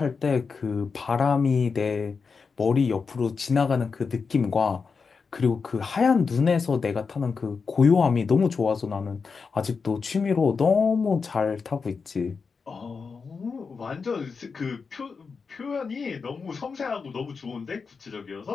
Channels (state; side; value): quieter; right; 5.1 dB